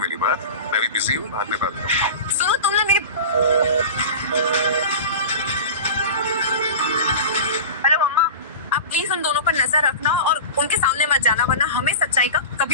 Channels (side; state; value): both; inverted; correlation -0.31